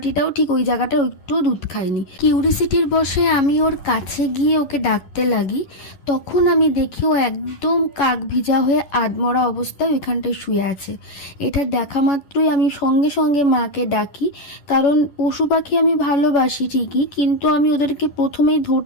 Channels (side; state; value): right; late; 10 ms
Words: ঠিক ওই জায়গাটা একটু দুধ খায়নি। কিউরিসিটির বসে আমি ওর কাছে গিয়ে ওকে ডাকতে লাগি। তখন আমি দেখি ও একদম কাক ভিজা হয়ে আধমরা অবস্থায় ওইখানটায় শুয়ে আছে। এটা দেখা মাত্রই আমি সঙ্গে সঙ্গে মাকে ডাকি, কারণ পশু পাখি আমি ভালোবাসি ঠিকই, কিন্তু আমি ওদেরকে প্রথমেই